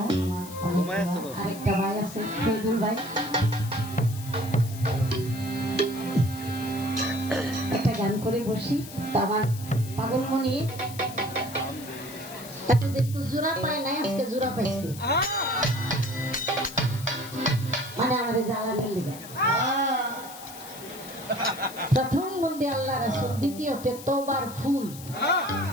আরেকটা ভাই আছে ফেদুল ভাই, একটা গান করে বসি। তো আমার পাগলমণি এতদিন তো জোড়া পায় নাই, আজকে জোড়া পাইছে, মানে আমাদের জ্বালানির লেগে। প্রথম বন্দে আল্লাহ রাসূল, দ্বিতীয়তে তওবার ফুল।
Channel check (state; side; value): noise; left; hiss, 15 dB below the sound